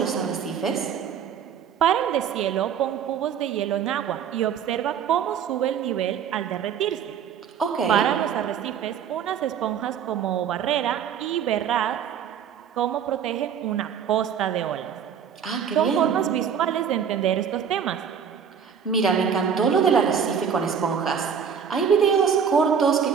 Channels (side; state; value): left; quieter; 7.7 dB